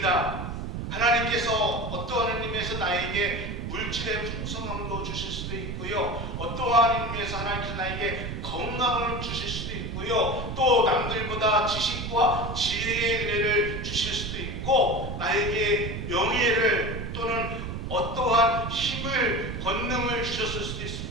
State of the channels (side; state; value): right; noise; rumble, 5 dB below the sound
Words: 하나님께서 어떠한 의미에서 나에게 물질의 풍성함도 주실 수도 있고요, 어떠한 의미에서 하나님께서 나에게 건강을 주실 수도 있고요, 또 남들보다 지식과 지혜의 은혜를 주실 수도 있고, 나에게 명예를 또는 어떠한 힘을, 권능을 주셨을 수도